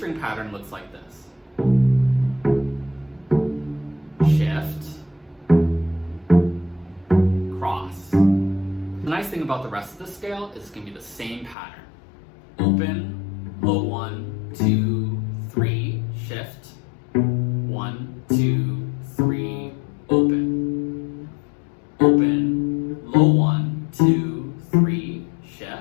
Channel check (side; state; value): right; drops out; at 11.6 s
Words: pattern looks like this. Shift, cross. The nice thing about the rest of the scale is it's going to be the same pattern. Open, low 1, 2, 3, shift, 1, 2, 3, open. Open, low 1, 2, 3,